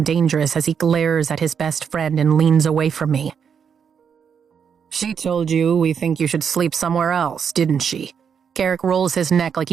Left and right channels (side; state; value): left; quieter; 7.1 dB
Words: dangerous as he glares at his best friend and leans away from me. She told you we think you should sleep somewhere else, didn't she? Garrick rolls his neck like